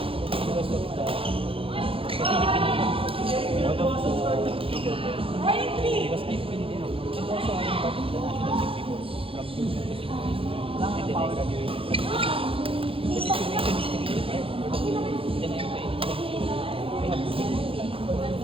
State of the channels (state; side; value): late; left; 0.27 ms